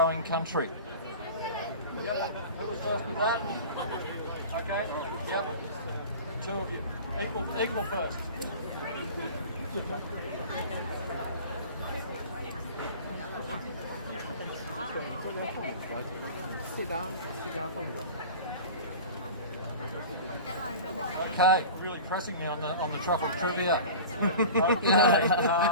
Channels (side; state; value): both; inverted; correlation -0.37